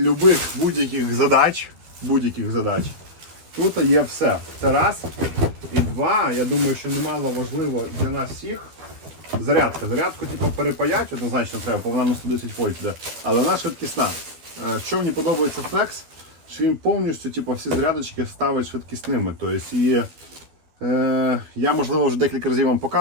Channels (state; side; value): late; left; 12 ms